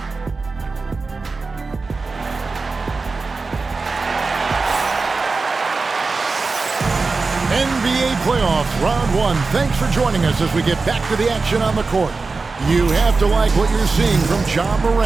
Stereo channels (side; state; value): left; quieter; 4.0 dB